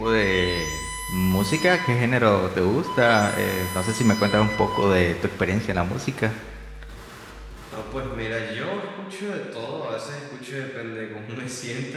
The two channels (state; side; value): identical; both; correlation 1.00